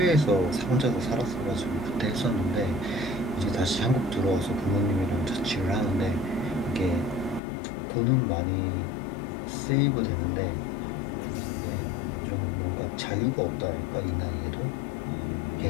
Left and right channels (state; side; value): drops out; right; at 7.4 s